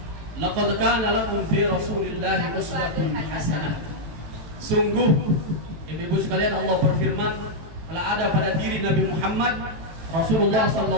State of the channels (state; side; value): late; left; 18 ms